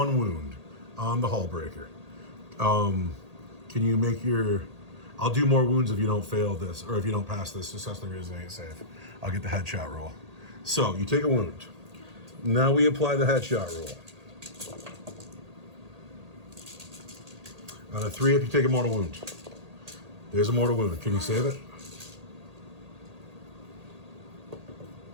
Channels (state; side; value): late; left; 1.8 ms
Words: wound on the Hull Breaker. Can you make your... I'll do more wounds if you don't fail this, or if you don't pass this successfully resilient save. I'll get the headshot roll. So, you take a wound. Now we apply the headshot roll. On a 3 up, you take a mortal wound. There's a mortal wound. Can you save it?